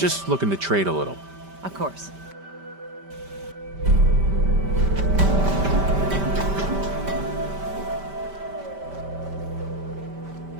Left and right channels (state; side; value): late; left; 5.1 ms